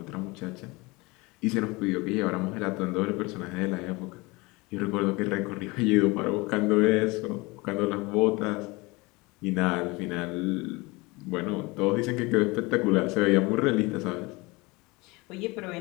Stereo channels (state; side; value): quieter; right; 24.4 dB